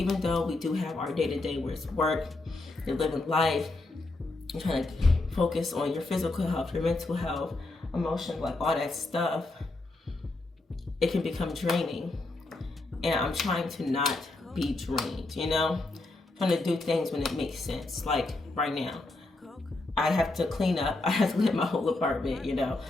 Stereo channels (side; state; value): right; quieter; 3.0 dB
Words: though we do have our day-to-day where it's work, you're living life, you're trying to focus on your physical health, your mental health, emotion, like all that stuff, it can become draining. And I'm trying to not be drained, you know? I'm trying to do things when it makes sense. Like right now, I have to clean up. I have to clean my whole apartment, you know?